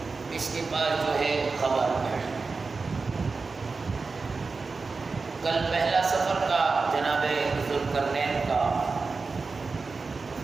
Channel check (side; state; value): left; quieter; 4.3 dB